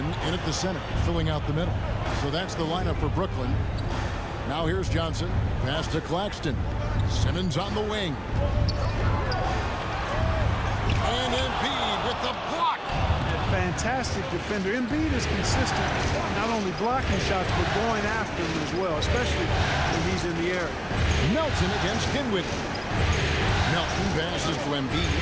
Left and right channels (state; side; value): identical; both; correlation 1.00